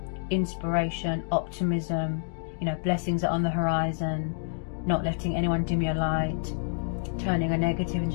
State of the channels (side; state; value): right; silent; digital silence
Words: inspiration, optimism, you know, blessings are on the horizon, not letting anyone dim your light, turning a negative